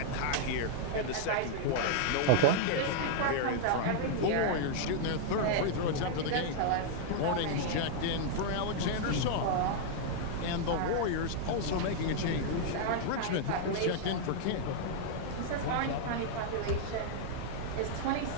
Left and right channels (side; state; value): both; different; correlation -0.01